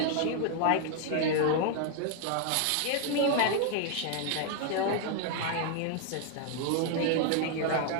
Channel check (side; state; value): both; different; correlation 0.00